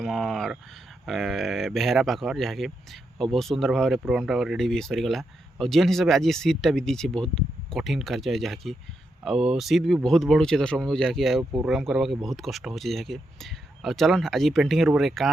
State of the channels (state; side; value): normal; both; correlation 0.83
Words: ବେହେରା ପାଖର ଯାହାକି ଆଉ ବହୁତ ସୁନ୍ଦର ଭାବରେ ପ୍ରୋଗ୍ରାମଟା ରେଡ଼ି ବି ସରିଗଲା ଆଉ ଯେନ୍ ହିସାବରେ ଆଜି ସିଟ୍ଟା ବି ଦେଇଛି ବହୁତ କଠିନ କାର୍ଯ୍ୟ ଯାହାକି ଆଉ ସିଟ୍ ବି ବହୁତ ବଢ଼ୁଛେ ଦର୍ଶକ ବନ୍ଧୁ ଯାହାକି ଆଉ ପ୍ରୋଗ୍ରାମ କରବାକେ ବହୁତ କଷ୍ଟ ହେଉଛି ଯାହାକି ଆଉ ଚଲନ୍ ଆଜି पेंटिंग रूप